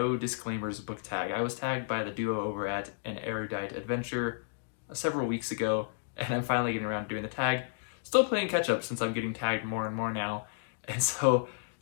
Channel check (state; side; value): silent; right; digital silence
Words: disclaimers book tag. I was tagged by the duo over at An Erudite Adventure several weeks ago, and I'm finally getting around to doing the tag. Still playing catch up since I'm getting tagged more and more now, and so